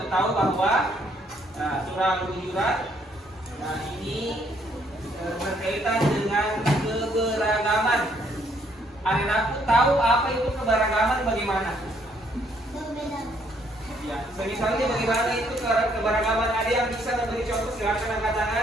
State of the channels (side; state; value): both; normal; correlation 0.68